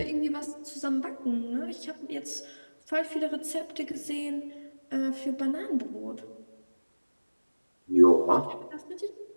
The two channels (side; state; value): both; inverted; correlation -1.00